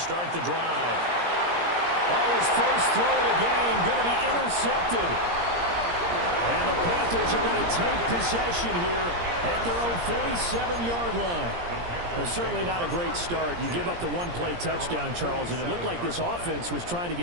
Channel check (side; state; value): left; late; 17 ms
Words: the drive. Oh, his first throw of the game going to be intercepted. And the Panthers are going to take possession here at their own 47-yard line. Certainly not a great start. You give up the one-play touchdown, Charles, and it looked like this offense was trying to